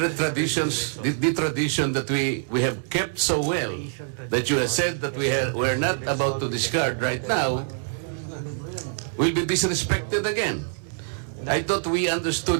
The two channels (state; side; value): silent; left; digital silence